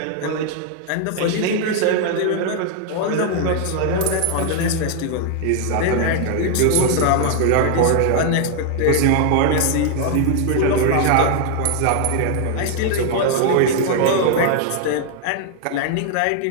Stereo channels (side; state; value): both; different; correlation 0.00